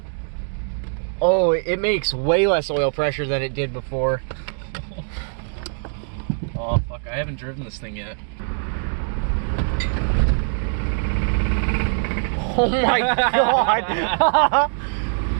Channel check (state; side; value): silent; left; 64 dB below the other